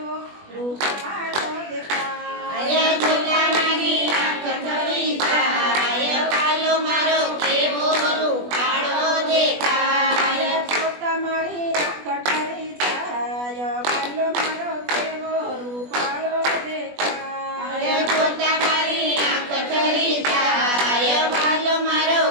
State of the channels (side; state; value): left; late; 20 ms